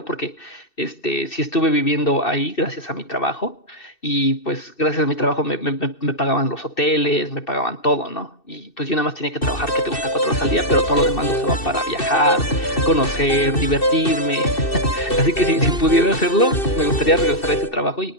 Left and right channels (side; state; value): right; late; 2.6 ms